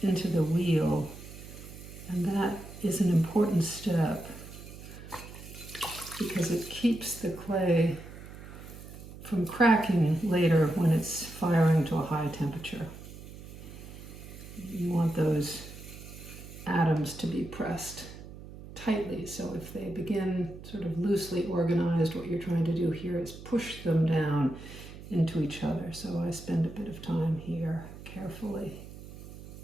into the wheel, and that is an important step because it keeps the clay from cracking later when it's firing to a high temperature. You want those atoms to be pressed tightly, so if they begin sort of loosely organized, what you're trying to do here is push them down into each other. So I spend a bit of time here carefully.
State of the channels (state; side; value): noise; right; hum, 14 dB below the sound